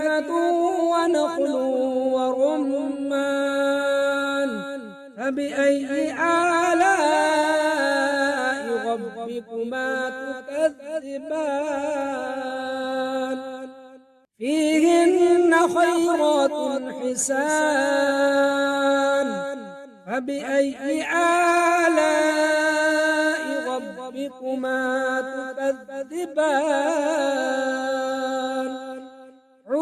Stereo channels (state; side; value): identical; both; correlation 1.00